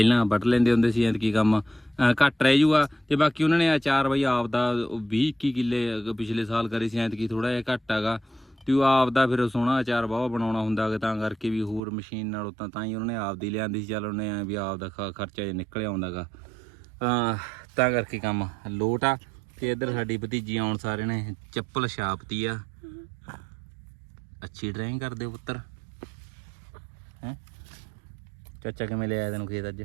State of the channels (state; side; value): drops out; left; at 11.8 s